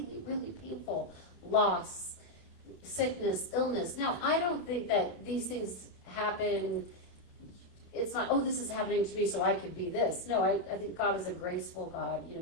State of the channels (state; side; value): late; right; 29 ms